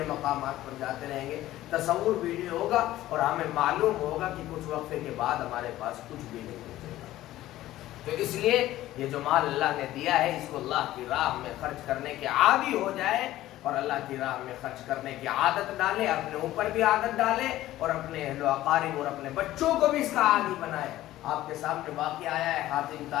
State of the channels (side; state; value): right; quieter; 15.0 dB